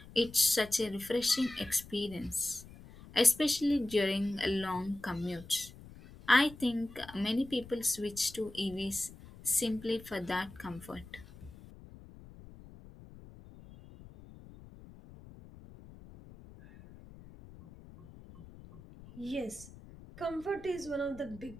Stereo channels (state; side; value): noise; left; rumble, 18 dB below the sound